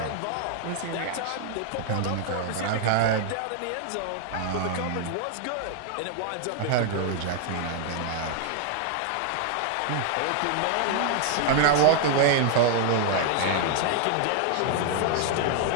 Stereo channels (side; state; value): both; different; correlation 0.00